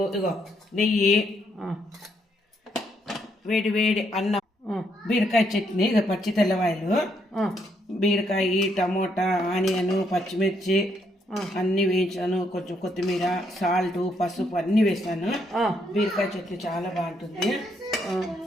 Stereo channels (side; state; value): both; normal; correlation 0.74